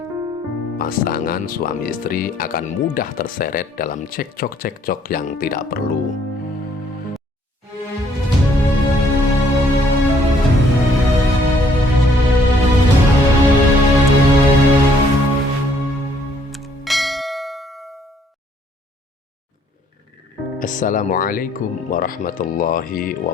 pasangan suami istri akan mudah terseret dalam cekcok-cekcok yang tidak perlu. Assalamualaikum warahmatullahi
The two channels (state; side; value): normal; both; correlation 0.65